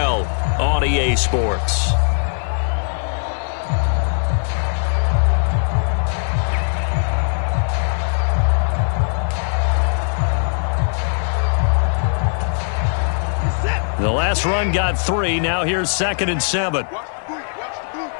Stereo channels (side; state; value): right; silent; digital silence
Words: on EA Sports. The last run got 3. Now here's 2nd and 7. Watch the boot.